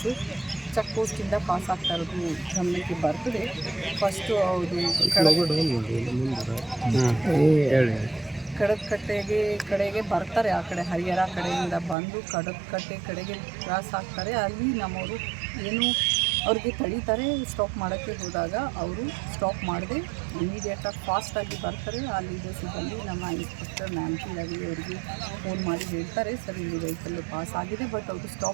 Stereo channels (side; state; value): left; drops out; at 12.0 s